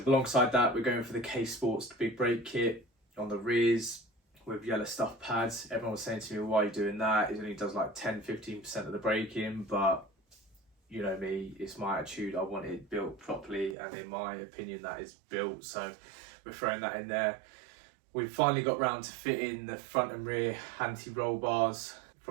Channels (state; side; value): drops out; left; at 13.8 s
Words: Alongside that, we're going for the K Sports big brake kit on the rears with yellow stuff pads. Everyone was saying to me, why are you doing that? It only does like 10-15% of the braking, but you know me, it's my attitude. I want it built properly, and in my opinion, that is built. So we're throwing that in there. We've finally got round to fitting the front and rear anti-roll bars